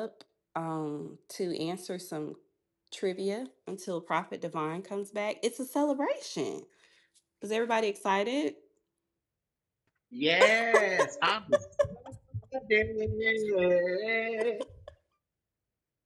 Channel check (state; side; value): identical; both; correlation 1.00